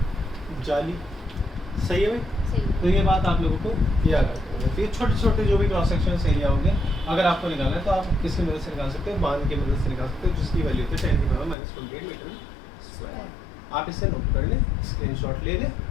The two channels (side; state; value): right; drops out; at 11.6 s